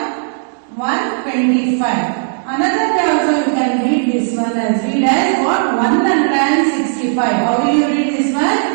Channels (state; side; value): silent; left; digital silence